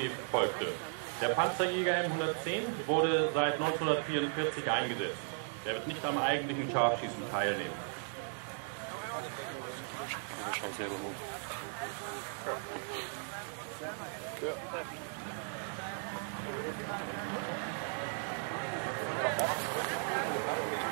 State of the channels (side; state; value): left; silent; 54 dB below the other